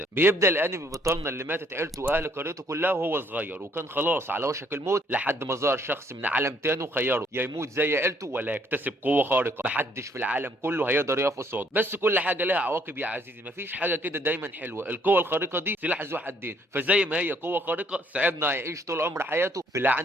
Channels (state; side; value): normal; both; correlation 0.66